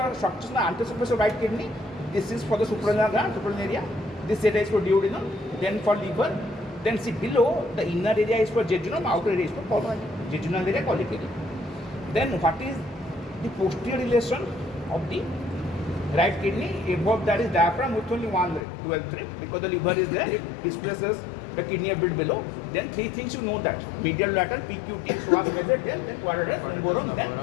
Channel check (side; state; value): right; drops out; at 18.6 s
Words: structures in the anterior surface of right kidney? This is for the suprarenal gland, suprarenal area. This area is for duodenum, then for liver. Then see below, the inner area is for jejunum, outer area is for colon. Jejunal area, colic area. Then what is the posterior relation of the right kidney? Above that is diaphragm with only one ring, 12th ring, because the liver is there, it displaces the kidney a bit below. Then 3 things you know that: medial lateral, PQT, psoas major, then quadratus lumborum,